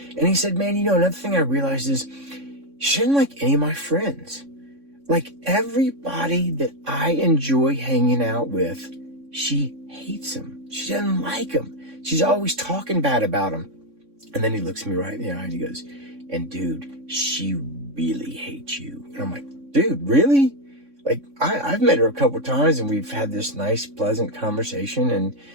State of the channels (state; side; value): late; left; 3.6 ms